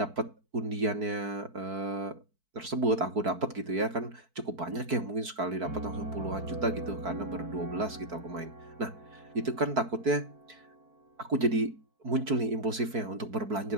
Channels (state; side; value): late; left; 4.6 ms